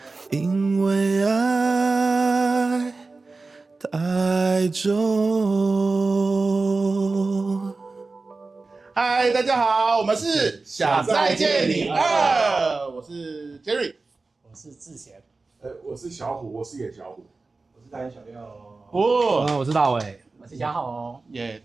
因为爱太重。嗨，大家好，我们是想再见你2，我是 Jerry， 我是志贤，我是小虎，我是野小虎，我是大眼小六。我是大伟，我是嘉豪。耶，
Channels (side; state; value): left; quieter; 3.7 dB